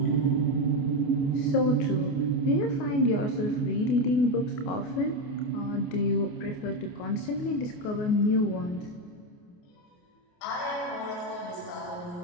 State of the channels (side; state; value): right; late; 28 ms